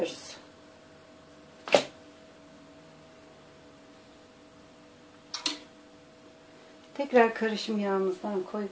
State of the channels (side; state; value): both; identical; correlation 1.00